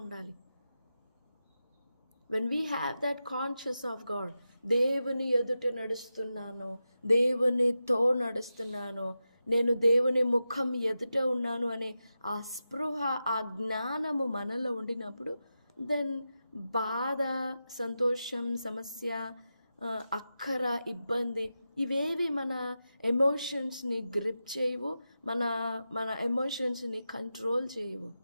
ఉండాలి. when we have that conscious of God, దేవుని ఎదుట నడుస్తున్నాను, దేవునితో నడుస్తున్నాను, నేను దేవుని ముఖం ఎదుట ఉన్నాను అనే ఆ స్పృహ, ఆ జ్ఞానము మనలో ఉండినప్పుడు, దెన్ బాధ, సంతోషం, సమస్య, అక్కర, ఇబ్బంది ఇవేవి మన ఎమోషన్స్ని గ్రిప్ చేయవు, మన ఎమోషన్స్ని కంట్రోల్ చేయవు.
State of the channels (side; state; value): both; inverted; correlation -0.91